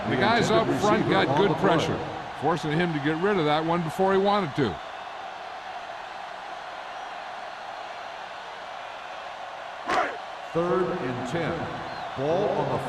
The guys up front got good pressure, forcing him to get rid of that one before he wanted to. Third and 10. Ball on the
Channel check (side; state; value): both; identical; correlation 1.00